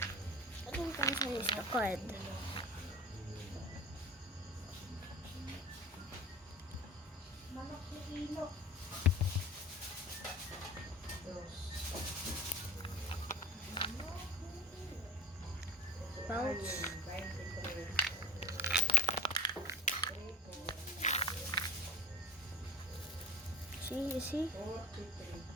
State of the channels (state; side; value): normal; both; correlation 0.34